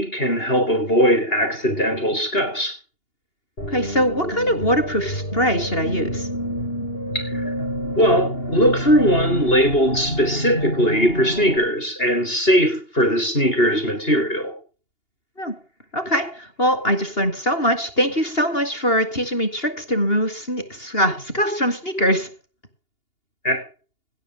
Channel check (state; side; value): late; right; 2.8 ms